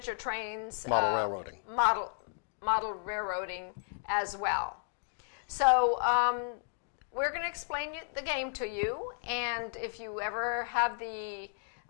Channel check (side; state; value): right; silent; digital silence